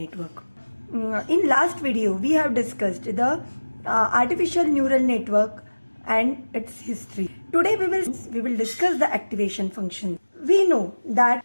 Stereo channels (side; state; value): both; inverted; correlation -1.00